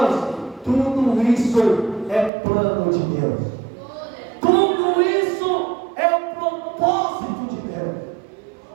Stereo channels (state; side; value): drops out; left; at 2.3 s